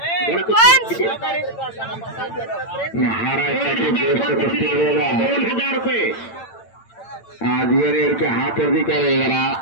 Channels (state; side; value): late; right; 8.9 ms